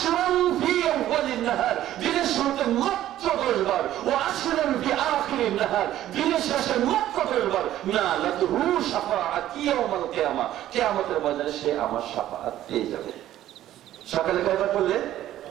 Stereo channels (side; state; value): left; quieter; 13.0 dB